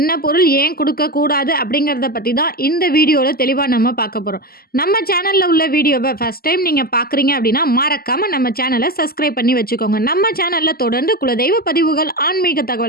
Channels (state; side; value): late; right; 0.44 ms